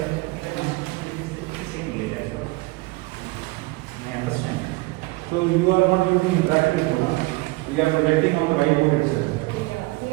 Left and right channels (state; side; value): quieter; left; 22.9 dB